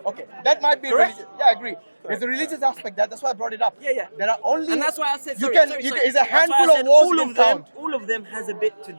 Okay, that might be Correct? religious. Yeah, I agree. There's a religious aspect. That's why I brought it up. Yeah. There are only. And that's why I said, you sorry, can. sorry, you sorry. Can, it's a That's why I handful said of wars all you of can them. count. All of them has a bit to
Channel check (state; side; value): inverted; both; correlation -1.00